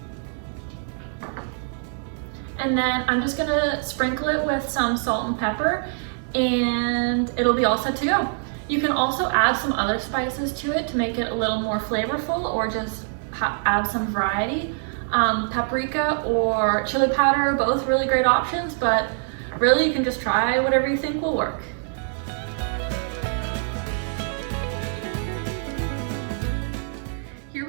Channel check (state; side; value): silent; left; 62 dB below the other